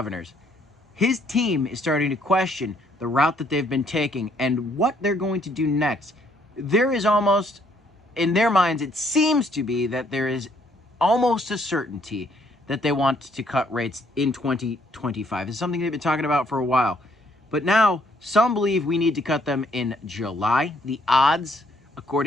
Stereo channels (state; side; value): normal; both; correlation 0.67